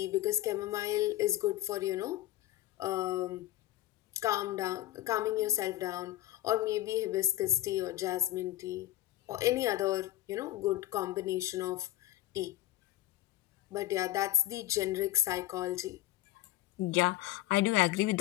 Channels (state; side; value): quieter; right; 15.2 dB